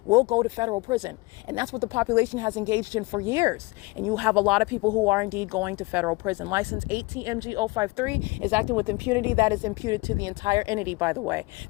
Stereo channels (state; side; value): quieter; right; 24.1 dB